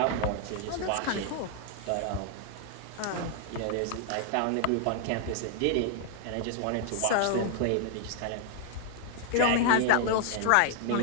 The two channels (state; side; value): different; both; correlation 0.00